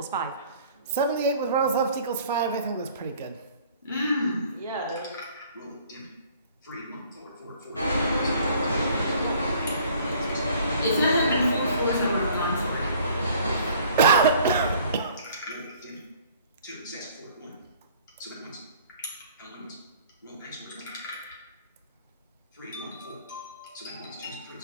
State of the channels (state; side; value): inverted; both; correlation -0.55